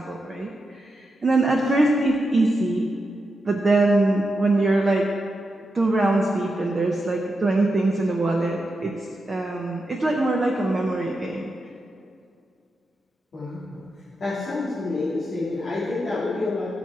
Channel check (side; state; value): both; normal; correlation 0.87